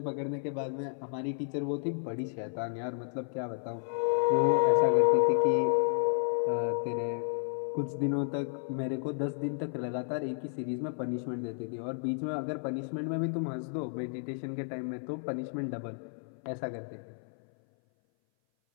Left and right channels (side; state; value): right; silent; 56 dB below the other